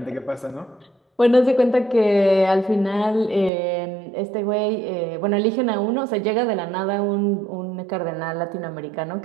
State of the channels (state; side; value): drops out; left; at 3.5 s